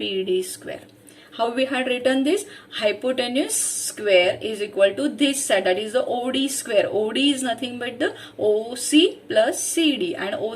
square. How we had written this? Hypotenuse square is equal to this side, that is the OD square. OD is nothing but the OC plus CD, and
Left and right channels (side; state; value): both; identical; correlation 1.00